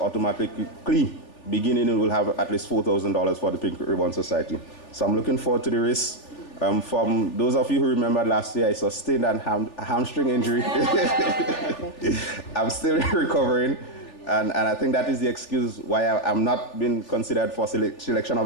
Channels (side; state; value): right; late; 3.4 ms